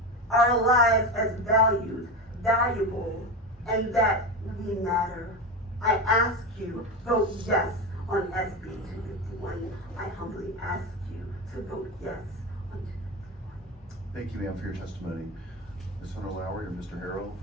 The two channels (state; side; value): normal; both; correlation 0.20